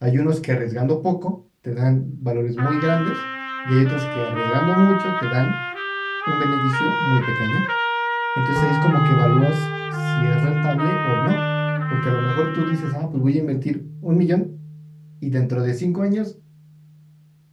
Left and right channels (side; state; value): both; identical; correlation 1.00